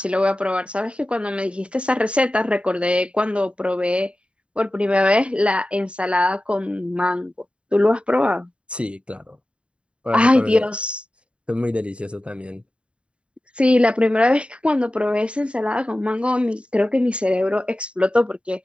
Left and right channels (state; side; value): late; left; 0.057 ms